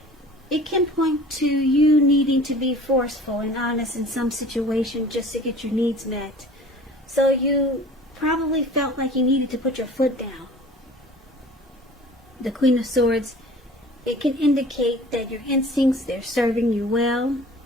it can point to you needing to be forceful and honest in some situation just to get your needs met. So you probably felt like you needed to put your foot down. The Queen of Swords, it can indicate that your instincts, they're serving you well,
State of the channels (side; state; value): both; normal; correlation 0.45